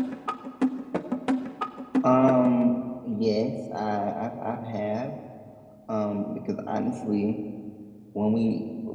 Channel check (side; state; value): both; identical; correlation 1.00